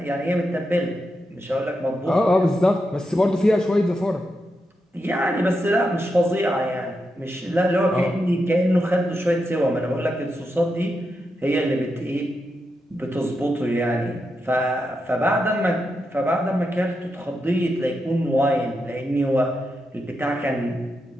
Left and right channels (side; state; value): both; normal; correlation 0.86